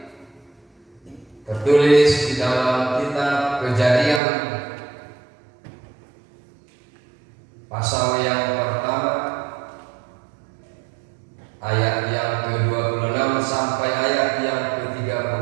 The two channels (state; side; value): drops out; left; at 4.2 s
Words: tertulis di dalam kitab Kejadian pasal yang pertama ayat yang ke-26 sampai ayat yang